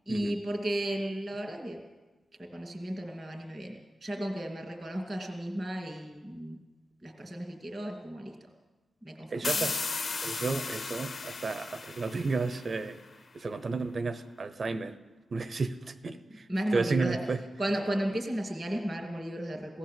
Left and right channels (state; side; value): normal; both; correlation 0.93